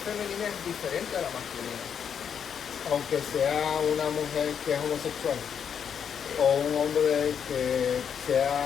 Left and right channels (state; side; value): quieter; right; 7.7 dB